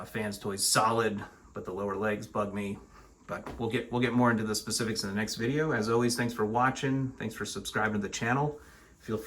Fans Toys solid, but the lower legs bug me. But we'll get more into the specifics in the next video. As always, thanks for watching. Thanks for subscribing to the channel. Feel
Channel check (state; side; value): identical; both; correlation 1.00